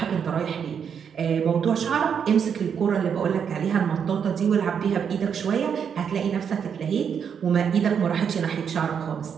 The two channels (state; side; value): quieter; left; 7.4 dB